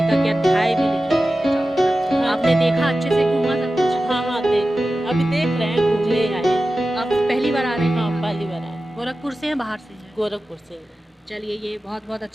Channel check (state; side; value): normal; both; correlation 0.94